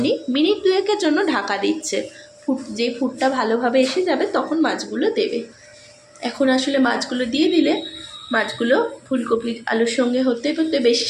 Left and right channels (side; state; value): both; identical; correlation 1.00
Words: মিনিট 2-এর জন্য ঢাকা দিচ্ছে। যে ফুটটা ভালোভাবে এসে যাবে তখন মাছগুলো দেবে। এখন আসলে মাছগুলো দিয়ে দিলে মাছগুলো ফুলকপি আলুর সঙ্গে হতে হতে বেশি